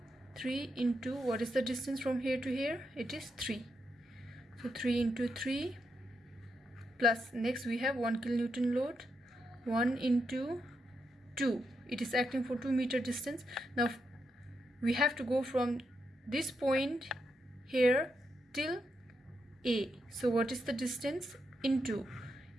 3 into, what is the distance from here to here? It is 3. So 3 into 3 plus, next we have 1 kilonewton load, 1 into 2. It is acting for 2 meter distance. Now we have to go from this point here till A. So what is the distance? Into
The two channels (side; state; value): both; normal; correlation 0.82